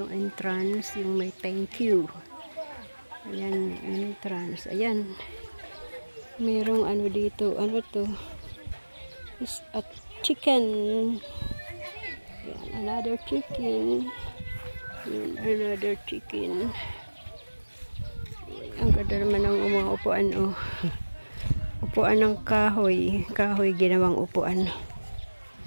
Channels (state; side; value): inverted; both; correlation -1.00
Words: entrance, yung may thank you. Ayan yung entrance. Ayan. Merong dito. Ano to? Is a chicken. Ayan, another chicken. Ayan, another chicken. Ang ganda naman ng mga upuan. Upuan ng kahoy. Kahoy ginawang upuan.